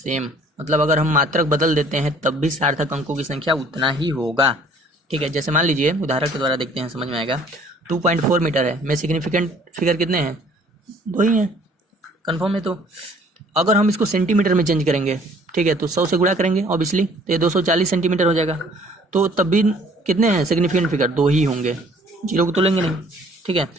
मतलब अगर हम मात्रक बदल देते हैं तब भी सार्थक अंकों की संख्या उतना ही होगा, ठीक है। जैसे मान लीजिए उदाहरण के द्वारा देखते हैं, समझ में आएगा। 2.4 मीटर है, में सिग्निफिकेंट फिगर कितने हैं? 2 ही हैं, कन्फर्म है। तो अगर हम इसको सेंटीमीटर में चेंज करेंगे, ठीक है, तो 100 से गुणा करेंगे ऑब्वियसली, तो ये 240 सेंटीमीटर हो जाएगा। तो तब भी कितने हैं सिग्निफिकेंट फिगर? 2 ही होंगे, 0 को तो लेंगे नहीं, ठीक है।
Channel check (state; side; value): normal; both; correlation 0.56